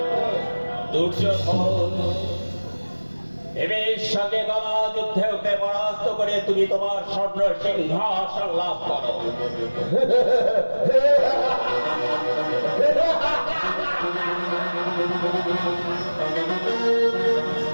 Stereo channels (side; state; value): both; inverted; correlation -1.00